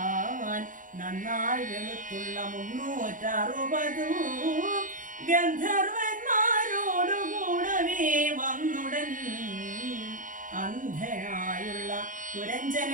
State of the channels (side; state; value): left; late; 0.38 ms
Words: നന്നായി വെളുത്തുള്ള 360 ഗന്ധർവന്മാരോടുകൂടവേ വന്നുടൻ അന്ധനായുള്ള